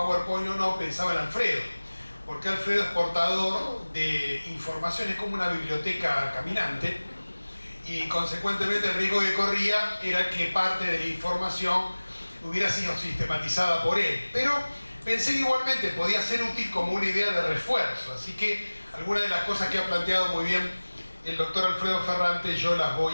o no, pensaba en Alfredo, porque Alfredo es portador de información, es como una biblioteca caminante, y consecuentemente el riesgo que corría era que parte de la información hubiera sido sistematizada por él. Pero pensé que igualmente podía ser útil como una idea de refuerzo, así que algunas de las cosas que ha planteado muy bien el doctor Alfredo Ferrante yo las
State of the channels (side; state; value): both; inverted; correlation -1.00